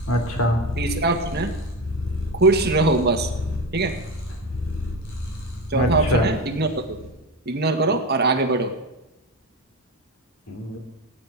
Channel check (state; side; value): normal; both; correlation 0.20